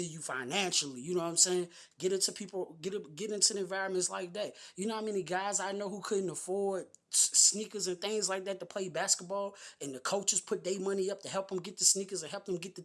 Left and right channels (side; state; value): both; identical; correlation 1.00